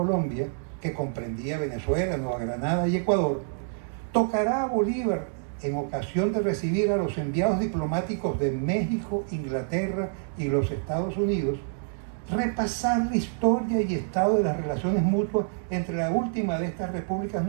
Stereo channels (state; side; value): silent; left; digital silence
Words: que comprendía Venezuela, Nueva Granada y Ecuador, tocará a Bolívar, en ocasión de recibir a los enviados diplomáticos de México, Inglaterra y los Estados Unidos, repasar la historia y estado de las relaciones mutuas entre la última de estas repúblicas